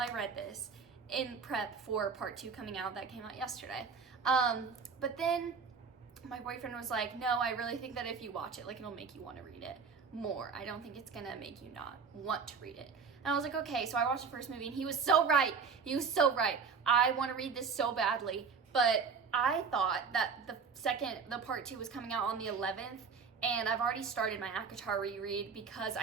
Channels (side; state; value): left; quieter; 5.6 dB